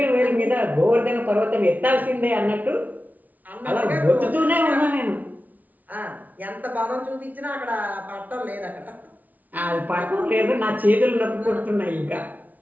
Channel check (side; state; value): left; late; 0.077 ms